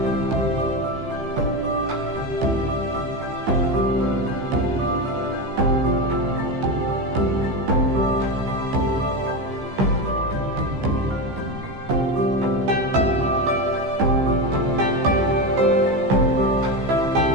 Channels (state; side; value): late; left; 15 ms